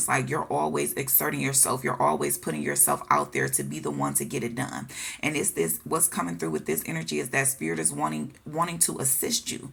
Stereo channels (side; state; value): both; identical; correlation 1.00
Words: like you're always exerting yourself. You're always putting yourself out there to be the one to get it done. And it's this, what's coming through with this energy is that spirit is wanting to assist you.